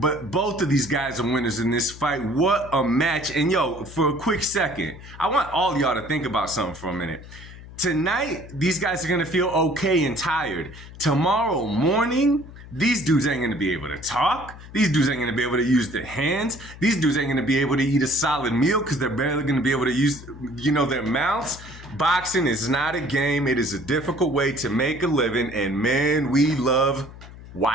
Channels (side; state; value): left; noise; hum, 16 dB below the sound